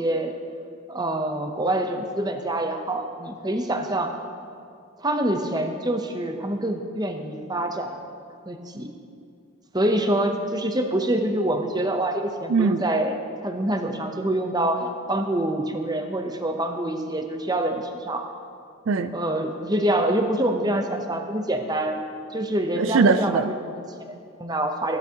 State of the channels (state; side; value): normal; both; correlation 0.45